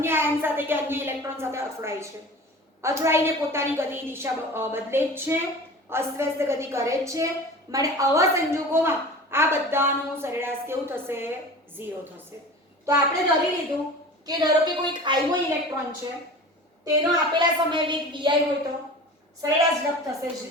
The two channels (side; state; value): both; normal; correlation 0.37